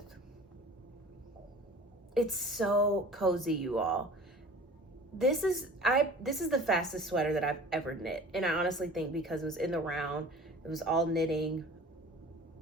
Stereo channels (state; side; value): normal; both; correlation 0.43